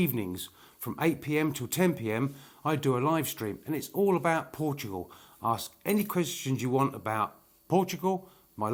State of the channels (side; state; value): both; identical; correlation 1.00